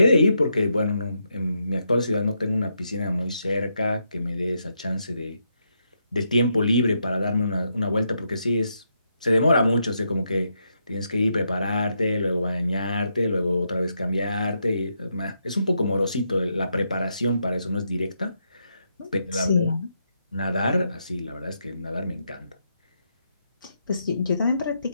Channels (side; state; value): both; inverted; correlation -0.81